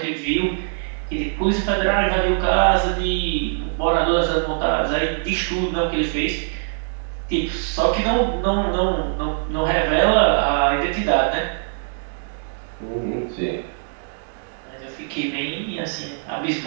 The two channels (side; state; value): left; silent; digital silence